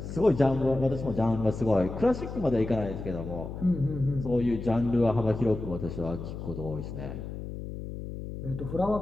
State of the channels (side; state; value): left; noise; hum, 8 dB below the sound